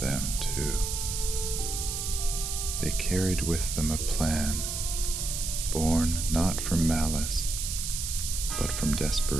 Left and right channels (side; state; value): right; noise; hiss, 3 dB below the sound